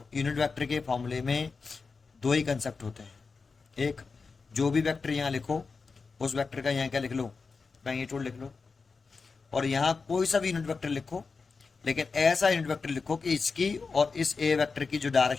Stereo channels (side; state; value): right; quieter; 4.6 dB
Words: यूनिट वेक्टर के फॉर्मूले में दो ही कंसेप्ट होते हैं, एक जो भी वेक्टर यहाँ लिखो उस वेक्टर का यहाँ क्या लिख लो, मैग्नीट्यूड लिख लो, और यहाँ कोई सा भी यूनिट वेक्टर लिखो लेकिन ऐसा यूनिट वेक्टर लिखो कि इसकी और इस ए वेक्टर की जो